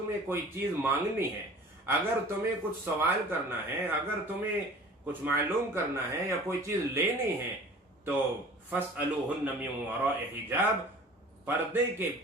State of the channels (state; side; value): normal; both; correlation 0.45